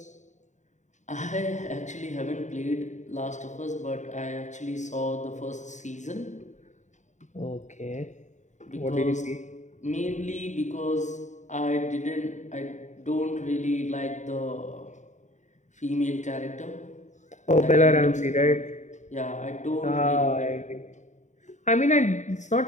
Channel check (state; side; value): late; right; 0.35 ms